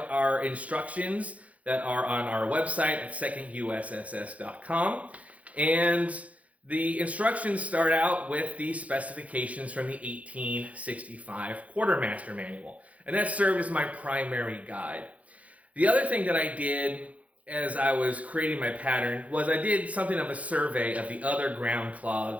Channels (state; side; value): late; left; 0.067 ms